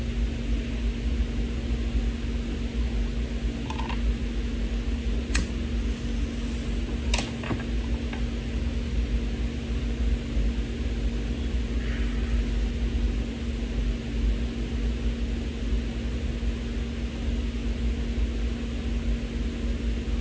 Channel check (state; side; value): identical; both; correlation 1.00